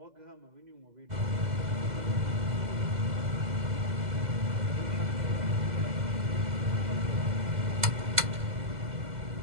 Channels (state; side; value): late; left; 2.0 ms